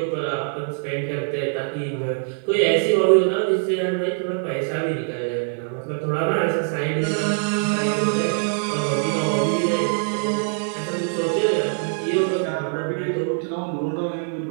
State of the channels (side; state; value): left; silent; digital silence